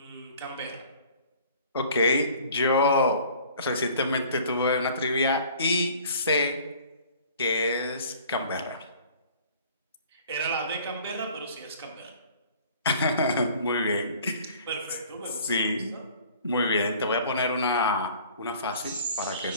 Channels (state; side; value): inverted; both; correlation -0.51